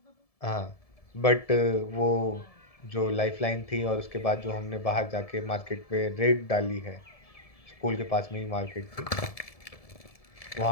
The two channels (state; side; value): late; right; 1.7 ms